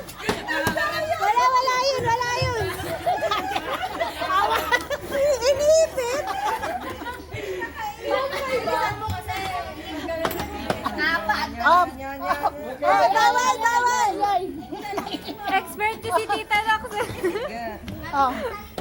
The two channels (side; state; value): both; identical; correlation 1.00